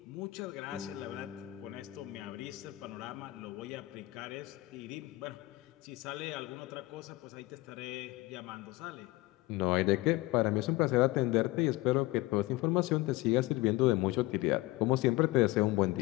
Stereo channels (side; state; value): right; quieter; 19.9 dB